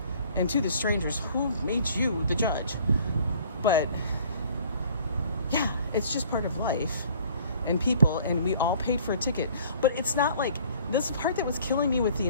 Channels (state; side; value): inverted; both; correlation -0.54